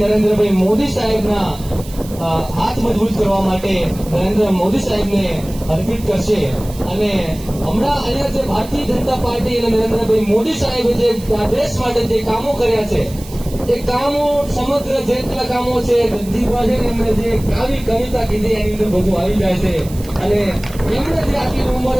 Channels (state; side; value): noise; right; hiss, 18 dB below the sound